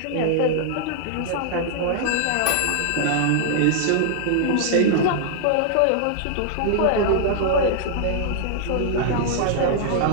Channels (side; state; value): both; different; correlation -0.01